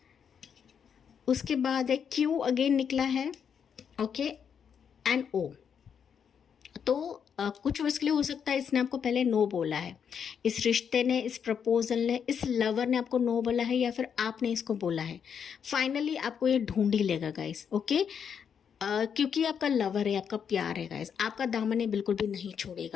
उसके बाद है Q अगेन निकला है, ओके, एंड O। तो कुछ वर्ष के लिए हो सकता है इसने आपको पहले नो बोला है, इस रिश्ते ने, इस प्रपोजल ने, इस लवर ने आपको नो बोला है, या फिर आपने इसको बोला है। फाइनली आपको ये ढूंढ ही लेगा गाइस। ओके, क्योंकि आपका लवर है, आपका प्यार है गाइस, आपका दामन बिल्कुल भी नहीं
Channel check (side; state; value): right; quieter; 7.4 dB